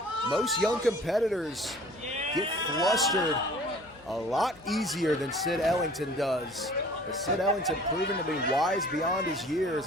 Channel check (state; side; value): noise; left; hum, 27 dB below the sound